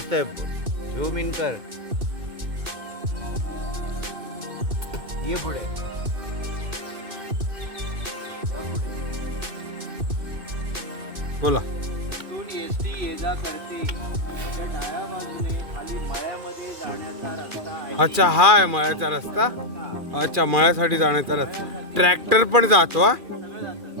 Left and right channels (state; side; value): late; left; 2.4 ms